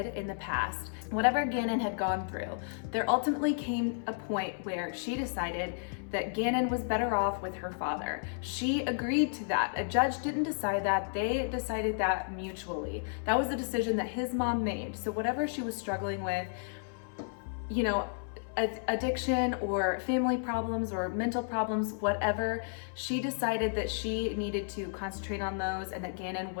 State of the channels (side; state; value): right; silent; 56 dB below the other